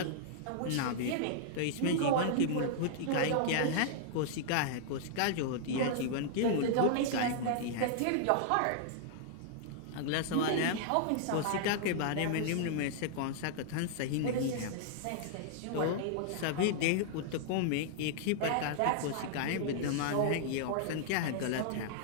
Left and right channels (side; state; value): both; different; correlation -0.01